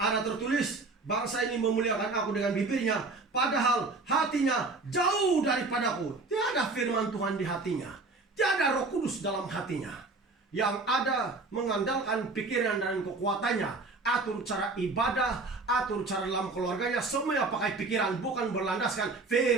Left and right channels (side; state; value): left; quieter; 3.6 dB